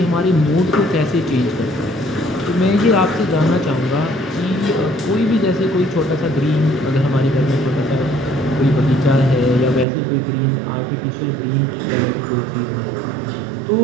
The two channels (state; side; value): drops out; left; at 9.9 s